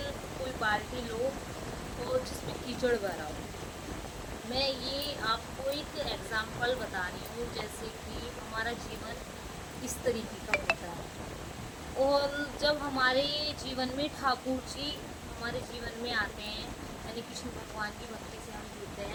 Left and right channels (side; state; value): both; identical; correlation 1.00